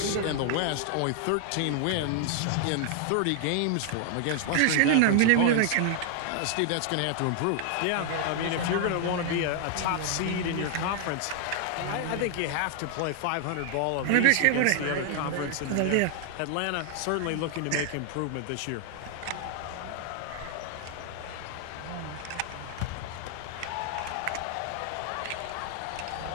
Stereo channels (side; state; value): both; different; correlation 0.00